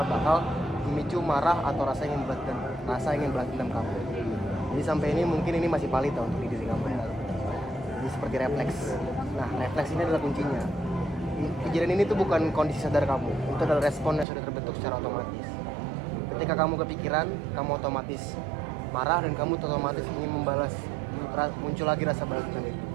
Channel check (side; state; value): left; drops out; at 14.2 s